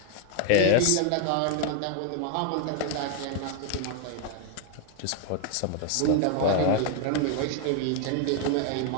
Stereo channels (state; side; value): different; both; correlation 0.00